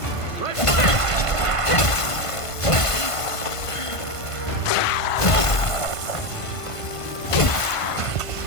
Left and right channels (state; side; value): late; right; 1.5 ms